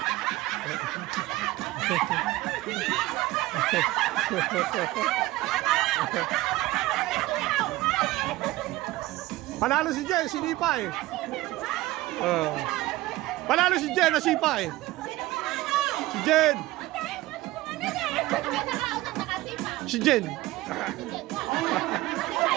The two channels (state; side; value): quieter; left; 18.1 dB